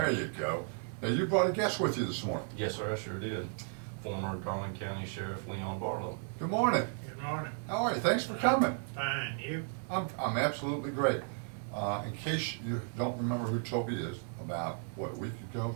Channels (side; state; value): left; silent; 55 dB below the other